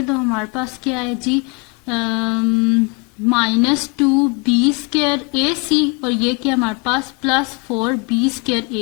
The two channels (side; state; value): right; quieter; 30.9 dB